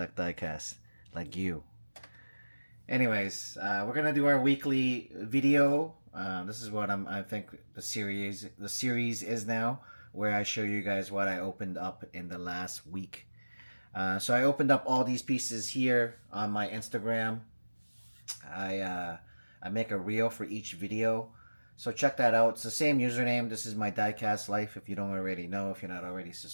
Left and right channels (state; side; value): inverted; both; correlation -1.00